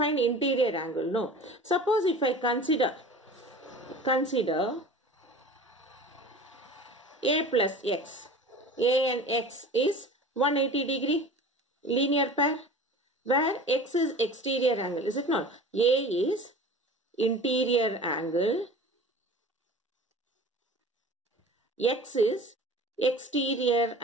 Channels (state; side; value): normal; both; correlation 0.39